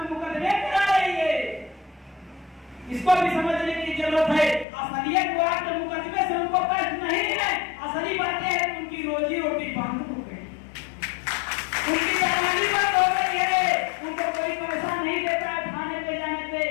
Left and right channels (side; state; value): right; drops out; at 4.7 s